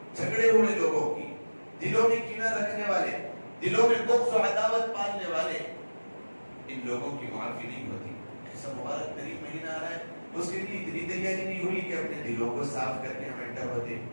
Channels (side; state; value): both; inverted; correlation -1.00